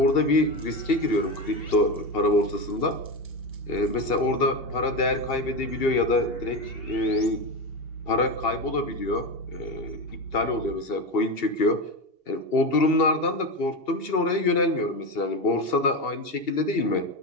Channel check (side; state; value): right; late; 2.8 ms